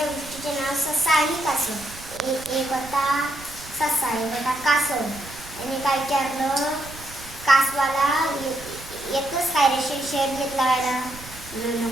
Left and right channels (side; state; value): right; noise; rumble, 17 dB below the sound